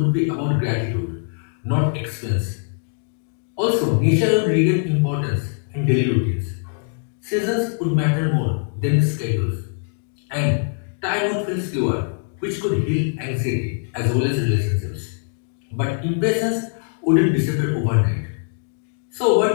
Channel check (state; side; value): silent; right; 64 dB below the other